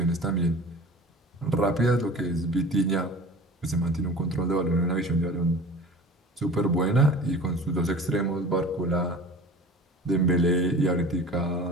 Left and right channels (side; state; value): both; normal; correlation 0.40